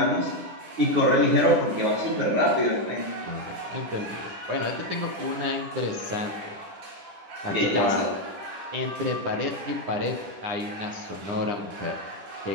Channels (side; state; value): left; late; 10 ms